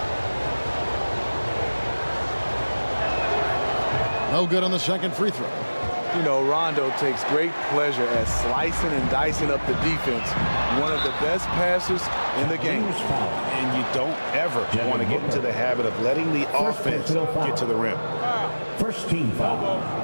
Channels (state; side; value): inverted; both; correlation -1.00